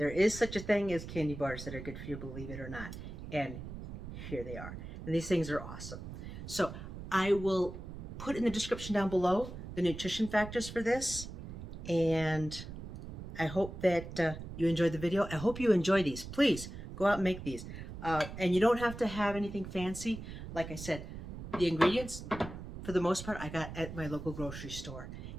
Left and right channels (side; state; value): right; noise; rumble, 10 dB below the sound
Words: is such a thing as candy bars that are good for you, believe it or not. And here they are. And these things are awesome. So I will put in the description down below the nutrition factors for this. And I hope that you enjoyed the video. I hope you enjoy these. Please go out and make these. And you don't have to have anything fancy. Like I said, the ingredients, for the most part, I got at my local grocery store.